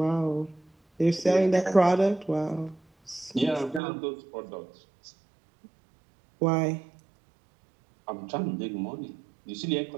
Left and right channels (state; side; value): drops out; left; at 3.8 s